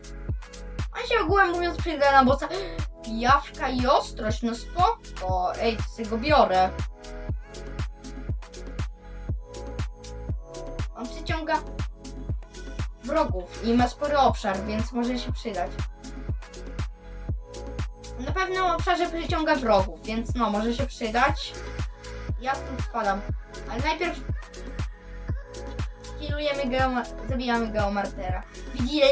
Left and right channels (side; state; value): both; identical; correlation 1.00